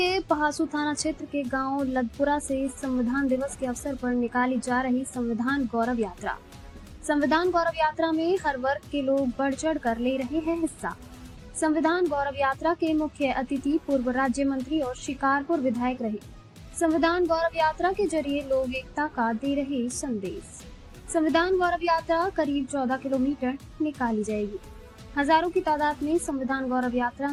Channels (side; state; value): both; identical; correlation 1.00